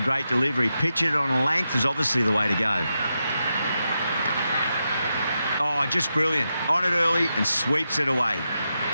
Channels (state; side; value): inverted; both; correlation -0.87